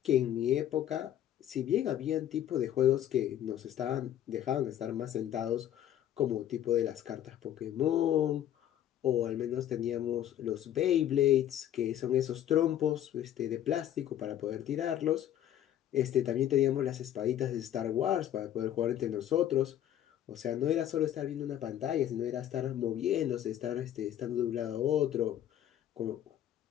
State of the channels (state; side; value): quieter; right; 11.3 dB